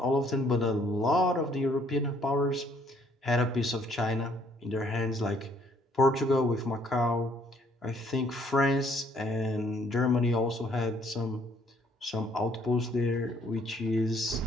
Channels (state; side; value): normal; both; correlation 0.64